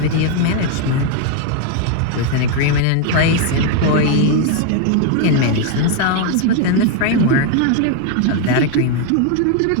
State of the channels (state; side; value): different; both; correlation 0.01